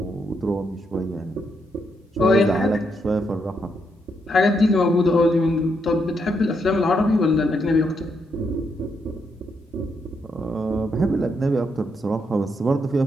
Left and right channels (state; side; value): normal; both; correlation 0.79